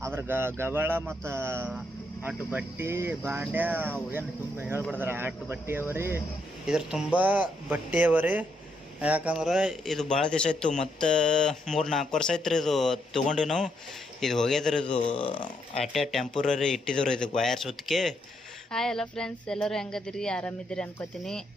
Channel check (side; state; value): both; normal; correlation 0.77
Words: ಅದ್ರ ಗಬಾಳ ಮತ್ತ ಅಟ್ಟು ಬಟ್ಟಿ ಬಾಂಡ್ಯ ಏನು ತುಂಬ ಹೇಳ್ಬಿಡ್ದಾರ. ಅಟ್ಟು ಬಟ್ಟಿ ಅವರಿ ಇದ್ರ ತುಂಬ ಬಟ್ಟೆ ಅವರಿ. ಯಾಕಂದ್ರೆ ಇದು ಭಾಳ ದಿವಸ ಇತ್ತು. ಮತ್ತು 3-4 ವರ್ಷ ಆಯ್ತು ರೀ ಇದು ತೊಗೊಂಡಿವಿ ನಾವು. ಇದು ಹೋಗ್ಯದ್ರಿ. ಇದು ಅಟ್ಟೆ ಟೆಂಪರರಿ ಇಟ್ಟಿದ್ರು ಇದಕ್ಕೆ ವಯರ್ ಸುತ್ತಿಗೆ. ಹಾಯ್ ಎಲ್ಲ ಫ್ರೆಂಡ್ಸ್, ಎಲ್ಲರೂ ಹೆಂಗದಿರಿ? ಆರಾಮಿದ್ದೀರಿ ಅನ್ಕೋತೀನಿ.